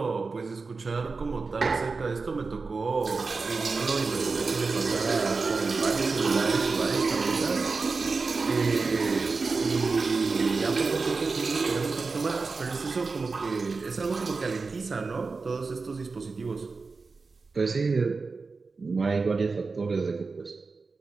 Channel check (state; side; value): quieter; left; 4.3 dB